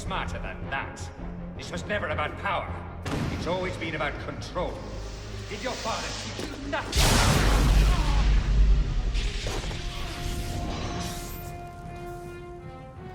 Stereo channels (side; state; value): both; identical; correlation 1.00